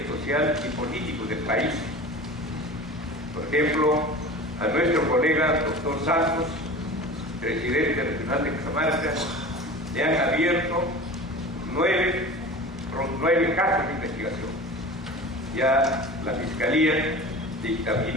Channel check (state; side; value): normal; both; correlation 0.36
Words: social y político del país. Por ejemplo, a nuestro colega doctor Santos, presidente regional de Cajamarca, le han abierto 9 casos de investigación. Ya la Fiscalía